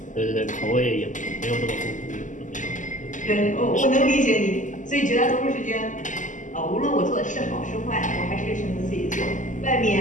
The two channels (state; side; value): late; right; 0.37 ms